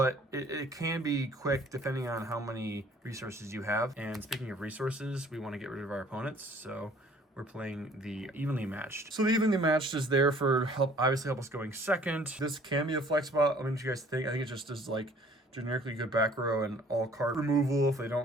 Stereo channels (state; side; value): normal; both; correlation 0.55